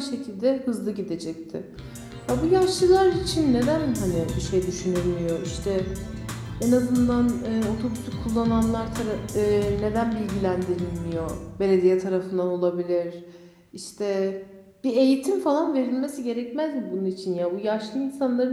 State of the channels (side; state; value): both; identical; correlation 1.00